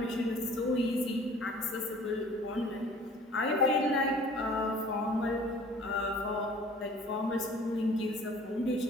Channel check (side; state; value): both; normal; correlation 0.50